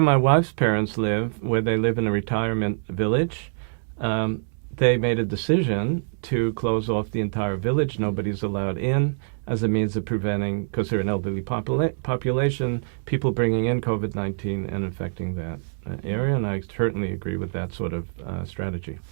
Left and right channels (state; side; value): silent; left; digital silence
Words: my wife's parents live, where they live in a retirement village, they made a decision to close off the entire village. Nobody's allowed in as a means of preventing, because they're an elderly population, people bringing in COVID-19 and infecting that area. And I certainly agree with that sort of strategy.